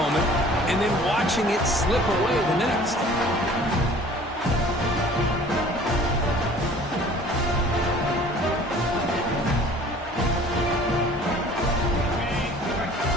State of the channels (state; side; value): normal; both; correlation 0.49